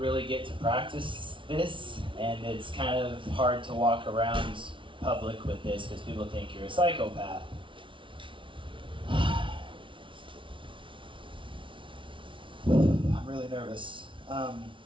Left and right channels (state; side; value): late; left; 0.25 ms